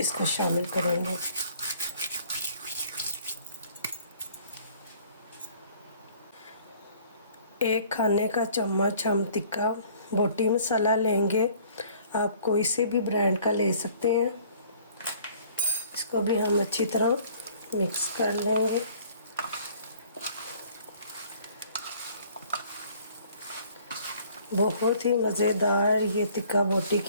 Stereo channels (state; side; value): inverted; both; correlation -0.55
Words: शामिल करेंगे। एक खाने का चम्मच हम टिक्का बोटी मसाला लेंगे। आप कोई से भी ब्रांड का ले सकते हैं। इसको भी हम अच्छी तरह मिक्स कर लेंगे। बहुत ही मज़ेदार ये टिक्का बोटी